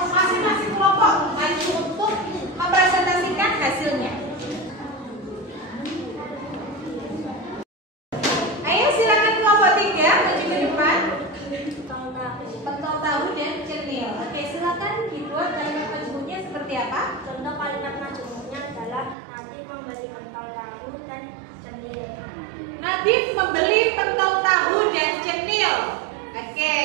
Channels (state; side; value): drops out; left; at 19.2 s